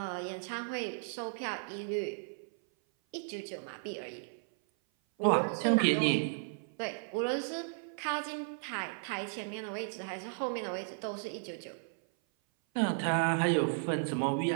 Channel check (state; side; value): silent; left; 55 dB below the other